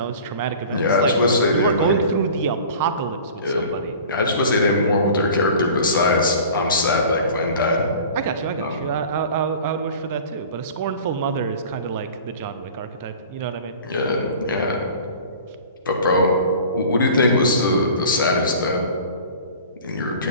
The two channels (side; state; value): both; inverted; correlation -0.42